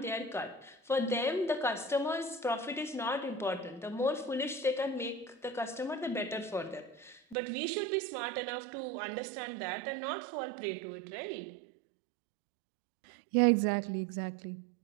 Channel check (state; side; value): drops out; left; at 7.4 s